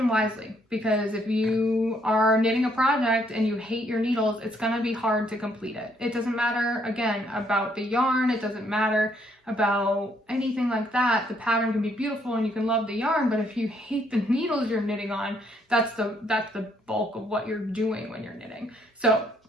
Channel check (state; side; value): normal; both; correlation 0.70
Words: wisely, because if you are knitting a project and you hate your needles, it's going to be hard to complete it. It doesn't matter, again, about the yarn. It doesn't matter about anything like that. The pattern can be beautiful and you can love the yarn, but if you hate the needles you're knitting on, that's the bulk of what you're doing when you're knitting. So